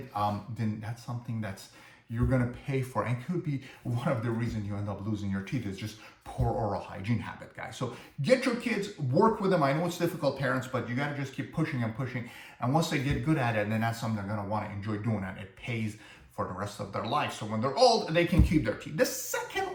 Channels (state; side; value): identical; both; correlation 1.00